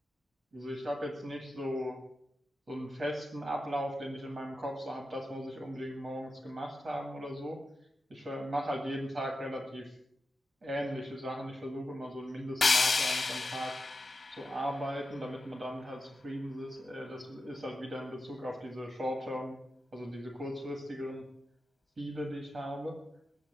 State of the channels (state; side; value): normal; both; correlation 0.91